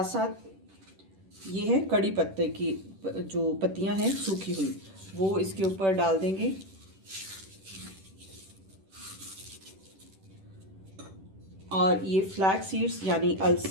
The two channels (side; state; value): left; late; 10 ms